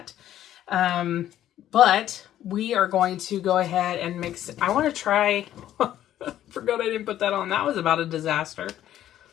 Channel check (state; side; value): quieter; right; 12.0 dB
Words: But we are going to go ahead and mix. I want to try. Forgot I didn't put that on. That was about a disaster.